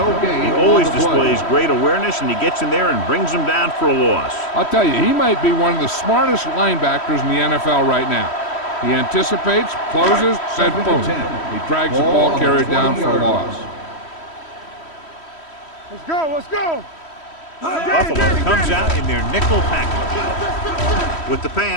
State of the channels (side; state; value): right; late; 3.1 ms